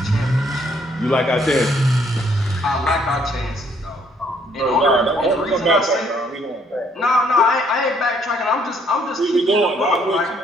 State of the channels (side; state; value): both; normal; correlation 0.66